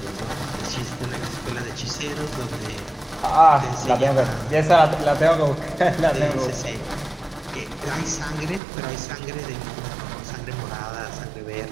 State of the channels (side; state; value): left; drops out; at 8.6 s